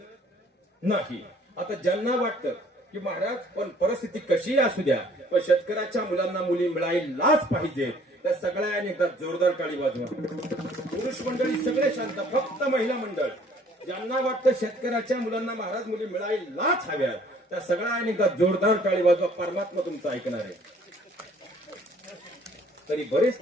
नाही. आता ज्यांना वाटतं की महाराज पण परिस्थिती कशी असू द्या पण शेतकऱ्याच्या मुलांना मुली मिळायलाच पाहिजे, त्या सगळ्यांनी एकदा जोरदार टाळी वाजवा. पुरुष मंडळी सगळे शांत, फक्त महिला मंडळ ज्यांना वाटतं शेतकऱ्याच्या मुलांना महाराज मुली मिळायलाच हव्या त्या सगळ्यांनी एकदा जोरदार टाळी वाजवा. परमात्मा तुमचं ऐकणार आहे. तरी बरेच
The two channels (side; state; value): both; normal; correlation 0.58